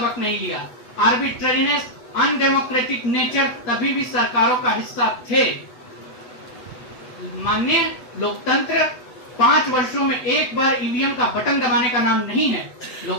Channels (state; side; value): late; right; 8.1 ms